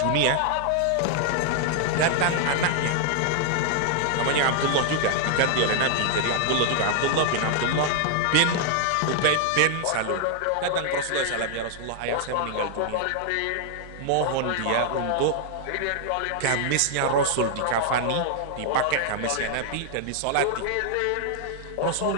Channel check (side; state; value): both; different; correlation 0.00